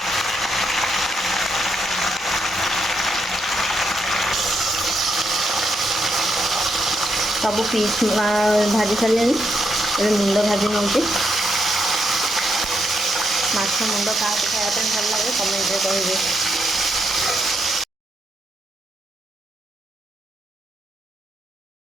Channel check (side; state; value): both; normal; correlation 0.79